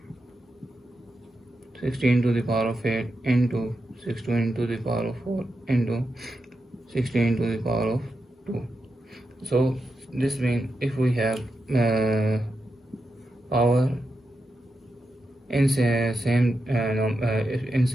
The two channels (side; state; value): both; normal; correlation 0.87